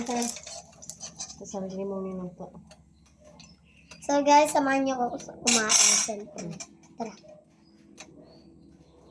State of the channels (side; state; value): both; identical; correlation 1.00